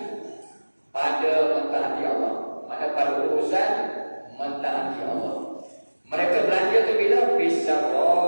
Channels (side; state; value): both; inverted; correlation -1.00